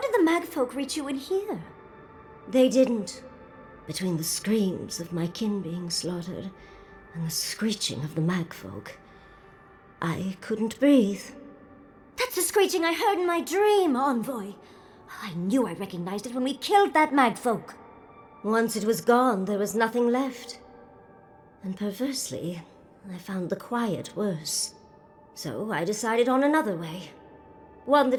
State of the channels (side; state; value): both; identical; correlation 1.00